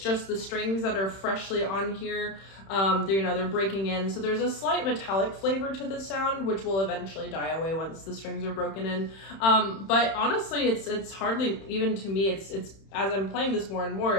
the strings that are freshly on here. They're breaking in. So there's a slight metallic flavor to the sound, which will eventually die away once the strings are broken in. But honestly, it's hardly, even to me, it's as I'm playing this more and more,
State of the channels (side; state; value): right; late; 31 ms